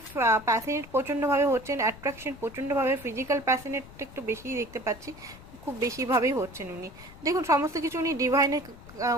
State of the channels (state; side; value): noise; left; rumble, 18 dB below the sound